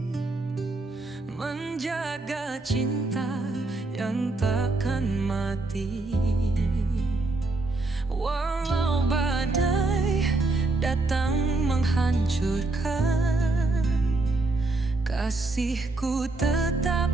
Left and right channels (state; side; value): quieter; left; 3.1 dB